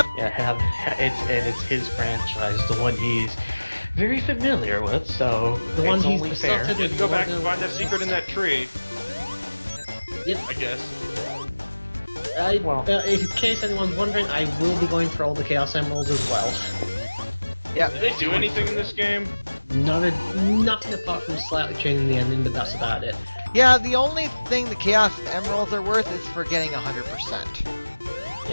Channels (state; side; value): inverted; both; correlation -1.00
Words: Yeah, it's his franchise, the one he's very familiar with, so The one it's he's only fair. besotted You have to go back and find that with- secret in that tree, Yep. I guess. In case anyone's wondering, I will be going for all the Chaos Emeralds as well. Yeah. Did they do anything in this game? Nothing apart from slightly changing the ending, but that's about it. Yeah, the only thing the Chaos Emeralds are worth is for getting 100%.